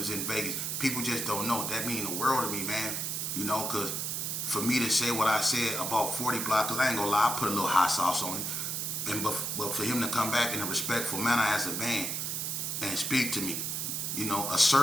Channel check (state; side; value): noise; right; hiss, 2 dB below the sound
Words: Vegas. People just don't know. That mean the world to me, man. You know, because for me to say what I said about 40 Blocc, because I ain't gonna lie, I put a little hot sauce on it. But for him to come back in a respectful manner as a man and speak to me, you know,